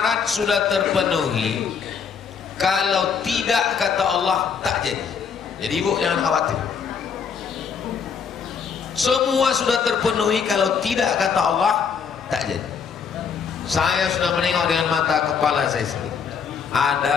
sudah terpenuhi. Kalau tidak, kata Allah, tak jadi. Jadi ibu jangan khawatir. Semua sudah terpenuhi, kalau tidak, kata Allah, tak jadi. Saya sudah menengok dengan mata kepala saya sendiri.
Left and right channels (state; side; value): quieter; right; 6.4 dB